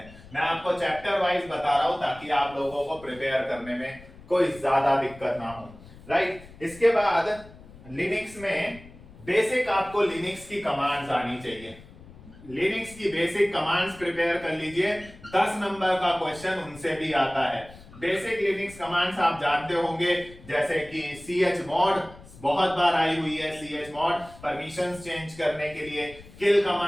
मैं आपको चैप्टर वाइज बता रहा हूं ताकि आप लोगों को प्रिपेयर करने में कोई ज्यादा दिक्कत ना हो, राइट। इसके बाद लिनक्स में बेसिक आपको लिनक्स की कमांड्स आनी चाहिए, लिनक्स की बेसिक कमांड्स प्रिपेयर कर लीजिए। 10 नंबर का क्वेश्चन उनसे भी आता है। बेसिक लिनक्स कमांड्स आप जानते होंगे, जैसे कि chmod बहुत बार आई हुई है, chmod परमिशंस चेंज करने के लिए, किल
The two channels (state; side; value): noise; left; rumble, 20 dB below the sound